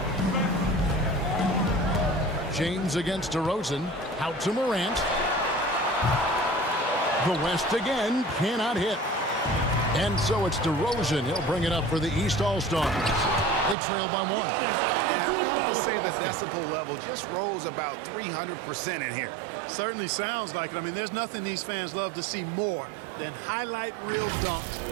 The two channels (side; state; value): left; drops out; at 13.8 s